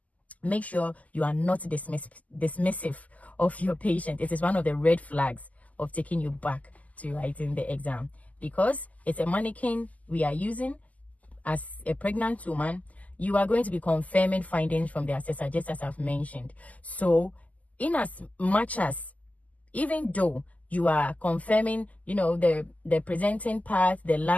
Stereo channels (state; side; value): late; right; 0.075 ms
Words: Make sure you are not dismissive of your patient. It is one of the red flags of taking you back to writing the exam, because it's a mannequin we are using. As a pregnant woman, you are going to be confirming findings from the assessor, just as I've mentioned. So in as much as, even though you are confirming, you know, the presenting part, the